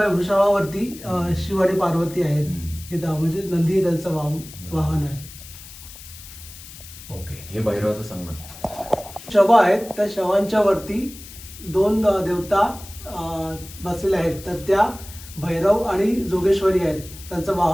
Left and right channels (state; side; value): noise; left; hiss, 16 dB below the sound